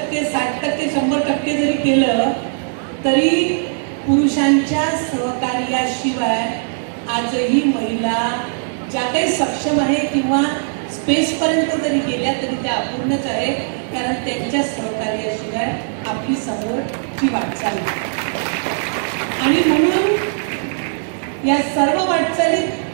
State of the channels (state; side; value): silent; left; digital silence